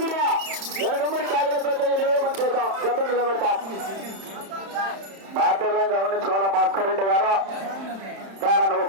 ఎనకమ్మడి కాగలతో 8 మంది చూద్దాం గతం నిలబెడతాం. బాధ్యతలను గమనించుకోవాలా భాస్కర్ రెడ్డి గారు ప్రారంభం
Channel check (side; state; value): left; late; 31 ms